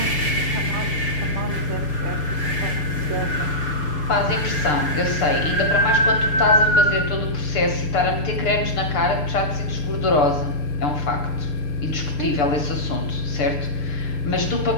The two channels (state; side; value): late; right; 6.8 ms